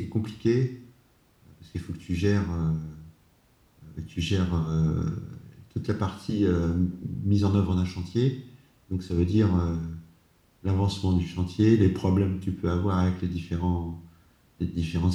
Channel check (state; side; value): identical; both; correlation 1.00